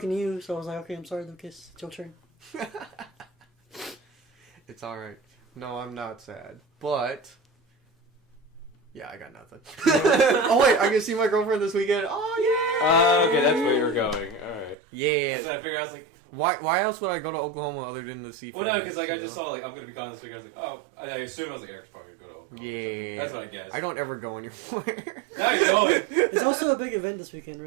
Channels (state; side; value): drops out; left; at 14.8 s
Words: to you, so I was like, okay, I'm sorry, Lucas. It's your turn. It's alright. No, I'm not sad. But... yeah, I got nothing. Oh, wait, I can see my girlfriend this weekend. Oh, yeah! Okay, that's where you're going. Alright. Yeah. So I figured, I was like... Why else would I go to Oklahoma other than to see... Well, no, because I just saw, I'm going to be gone this week. I was like, oh... I assumed I was like, Eric's probably going to go to Oklahoma. Yeah. That's what I guessed. I don't ever go anywhere. Now you're going! It's also a big event this weekend,